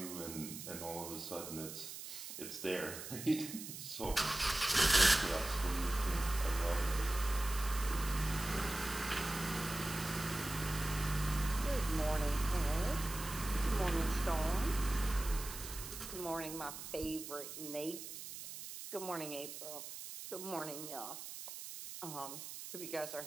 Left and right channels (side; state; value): right; noise; hiss, 9 dB below the sound